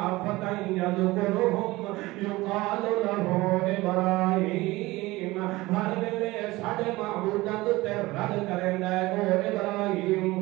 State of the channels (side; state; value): left; quieter; 20.0 dB